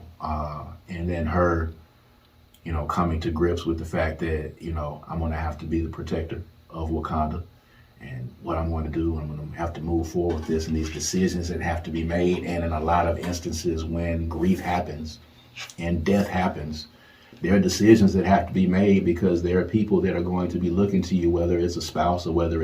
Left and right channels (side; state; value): both; identical; correlation 1.00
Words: And then her, coming to grips with the fact that, I'm going to have to be the protector of Wakanda, and what I'm going to do, I'm going to have to move forward with this and these decisions that have to be made. And in a lot of instances when grief happens and death happens, there are decisions that have to be made, because there are people that are going to be looking to you, whether it's a spouse or whether